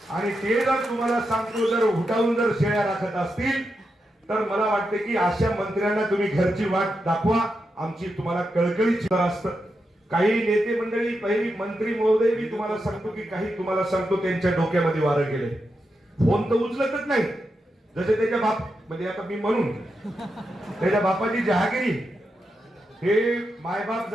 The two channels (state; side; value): normal; both; correlation 0.86